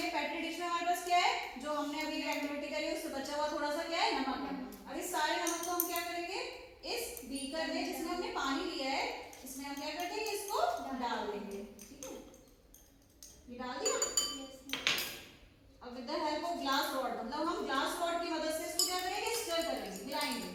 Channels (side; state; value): both; identical; correlation 1.00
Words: पेट्री डिश में हमारे पास क्या है, जो हमने अभी एक्टिविटी करी उससे बचा हुआ थोड़ा सा क्या है, नमक है। अब इस सारे नमक को हम क्या करेंगे, इस बीकर में जिसमें हमने पानी लिया है, इसमें हम क्या कर देंगे, इसको डाल देंगे। ठीक है, ये डाल दिया। अब with the help of glass rod, मतलब हम ग्लास रॉड की मदद से इसको क्या करेंगे, स्टर करेंगे, मिलाएंगे।